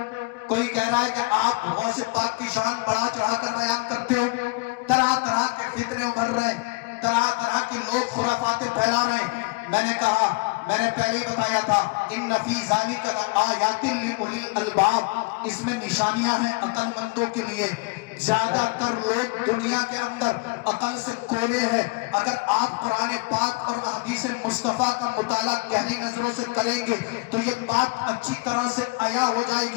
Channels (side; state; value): right; quieter; 27.2 dB